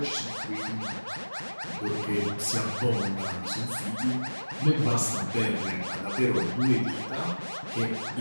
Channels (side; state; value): both; inverted; correlation -1.00